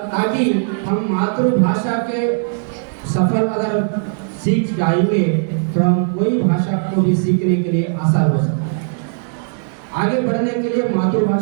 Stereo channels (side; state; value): left; silent; digital silence